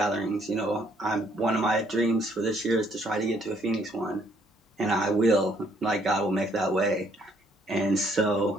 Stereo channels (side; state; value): both; normal; correlation 0.66